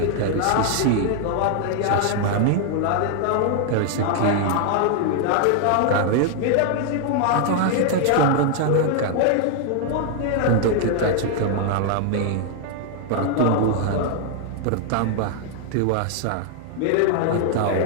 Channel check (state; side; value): different; both; correlation 0.00